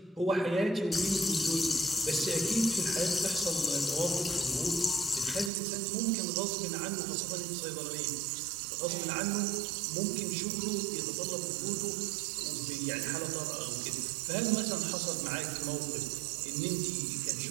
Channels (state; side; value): drops out; left; at 5.5 s